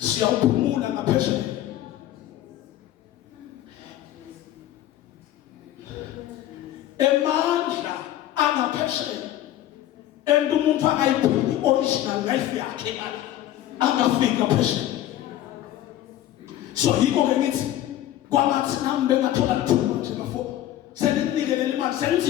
ngaphesheya. Emandla angaphesheya ento umuntu akayiphili original life yakhe angafika phesheya. So yiko ke ngithi kwamathi nami bengathola lithuba nje bafo senginikele imali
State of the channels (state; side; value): quieter; right; 13.0 dB